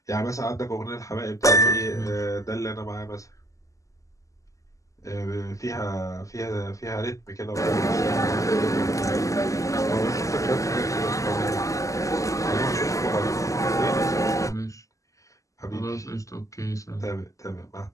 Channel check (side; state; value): right; late; 0.16 ms